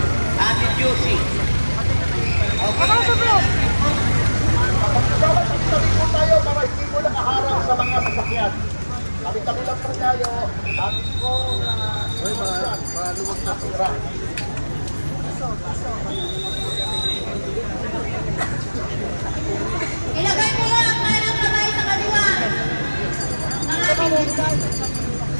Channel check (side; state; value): both; inverted; correlation -1.00